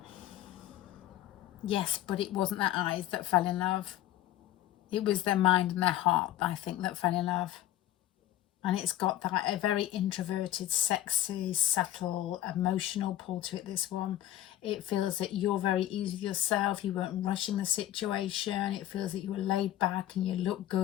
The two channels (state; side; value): quieter; right; 13.4 dB